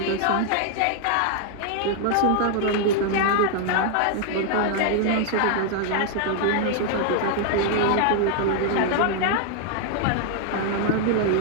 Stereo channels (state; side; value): different; both; correlation 0.00